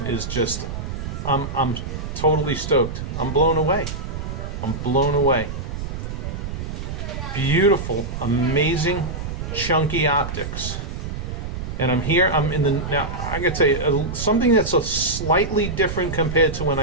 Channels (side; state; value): right; noise; rumble, 6 dB below the sound